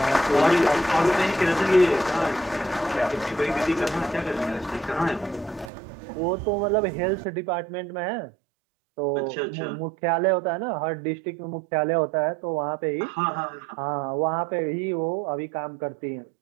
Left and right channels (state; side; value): drops out; left; at 5.7 s